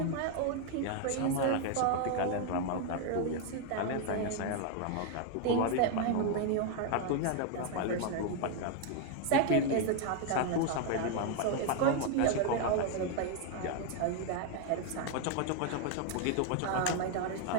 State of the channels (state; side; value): different; both; correlation 0.01